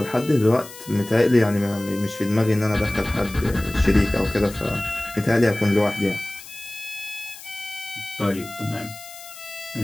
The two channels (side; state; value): left; noise; hiss, 16 dB below the sound